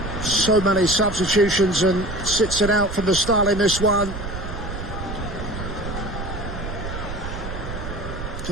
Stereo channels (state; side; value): noise; right; rumble, 7 dB below the sound